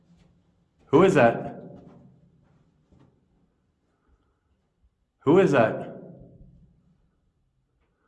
Who is that? Who is that?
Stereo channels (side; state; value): both; identical; correlation 1.00